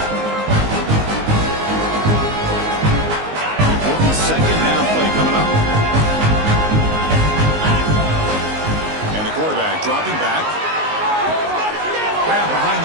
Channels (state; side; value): late; left; 19 ms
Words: Dropping back. Grab behind